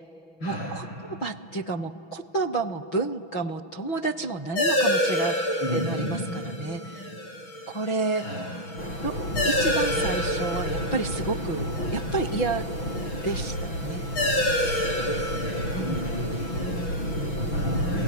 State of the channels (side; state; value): right; late; 6.1 ms